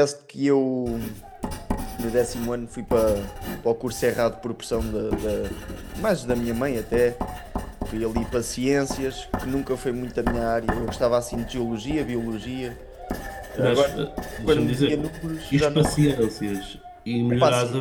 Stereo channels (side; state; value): both; identical; correlation 1.00